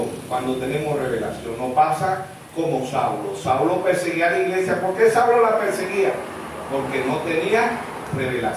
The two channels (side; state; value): both; identical; correlation 1.00